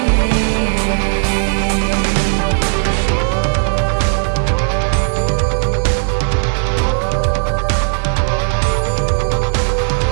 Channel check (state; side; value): silent; left; digital silence